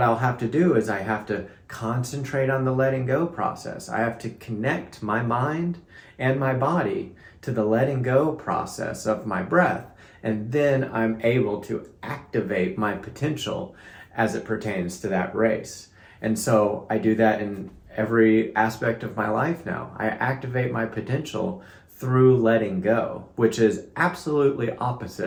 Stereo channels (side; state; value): both; identical; correlation 1.00